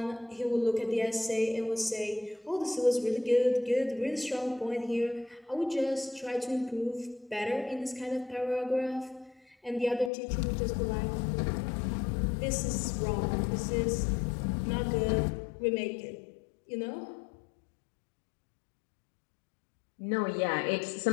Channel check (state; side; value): drops out; right; at 10.1 s